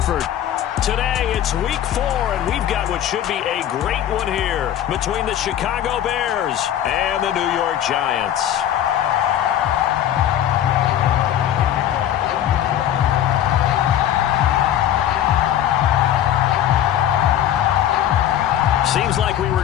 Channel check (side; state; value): right; quieter; 11.1 dB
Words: Today, it's week 4, and we've got what should be a great one here between the Chicago Bears and the New York Giants. Seems like we